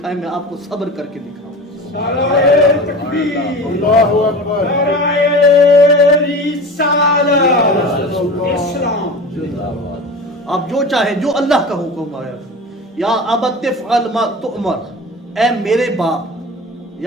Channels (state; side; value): normal; both; correlation 0.33